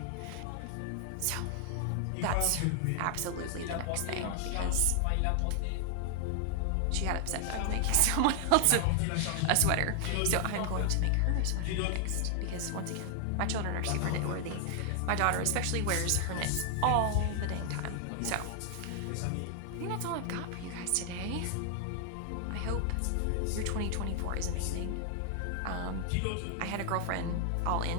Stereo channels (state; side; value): different; both; correlation 0.00